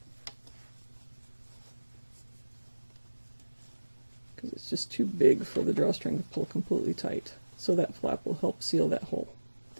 Because it's just too big for the drawstring to pull completely tight. So that flap will help seal that hole.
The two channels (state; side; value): inverted; both; correlation -1.00